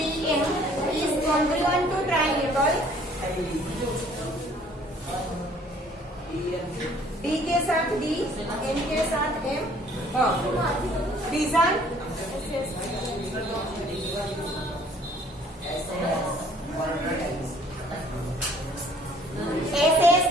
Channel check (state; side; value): normal; both; correlation 0.57